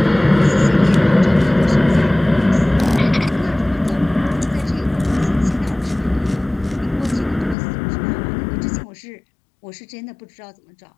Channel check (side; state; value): right; drops out; at 7.6 s